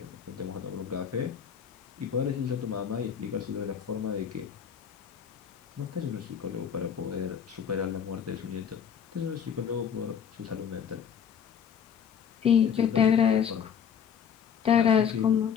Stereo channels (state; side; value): quieter; right; 7.9 dB